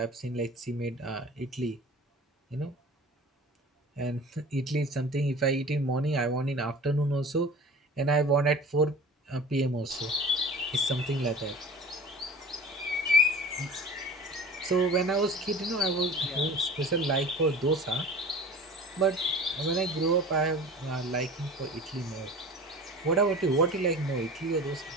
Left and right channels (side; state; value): both; normal; correlation 0.39